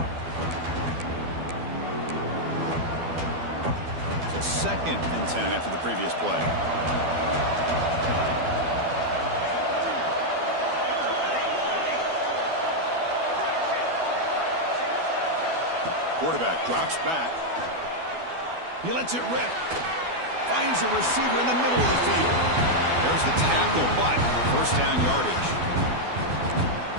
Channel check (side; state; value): left; late; 12 ms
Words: So 2nd and 10 after the previous play. Quarterback drops back. He lets it rip. Finds a receiver in the middle of the field. There's the tackle, but first down yardage.